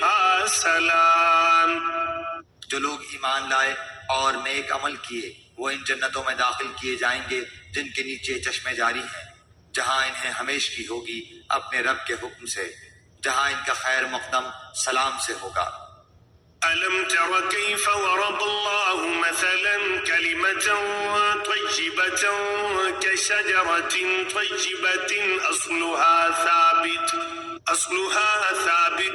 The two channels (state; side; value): identical; both; correlation 1.00